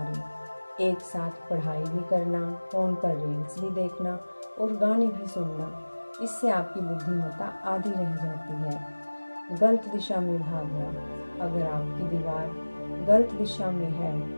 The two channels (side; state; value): both; inverted; correlation -1.00